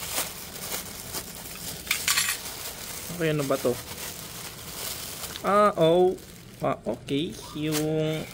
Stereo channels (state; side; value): identical; both; correlation 1.00